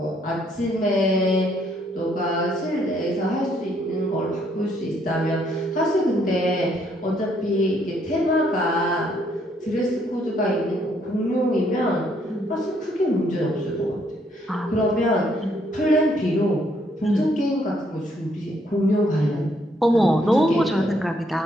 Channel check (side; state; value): both; normal; correlation 0.70